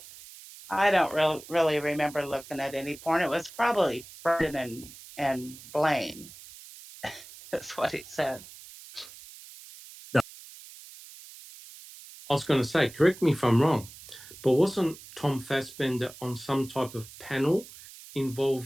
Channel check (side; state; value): right; noise; hiss, 18 dB below the sound